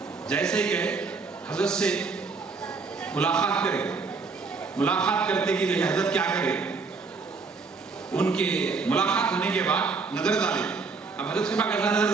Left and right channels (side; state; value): left; quieter; 4.5 dB